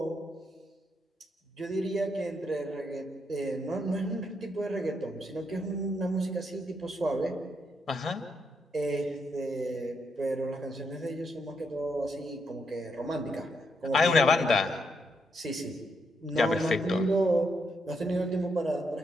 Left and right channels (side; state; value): both; normal; correlation 0.79